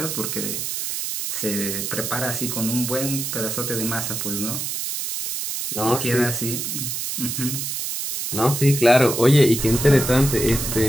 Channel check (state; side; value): noise; right; hiss, 4 dB below the sound